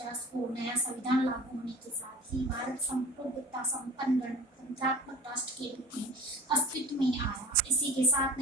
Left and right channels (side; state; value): both; normal; correlation 0.38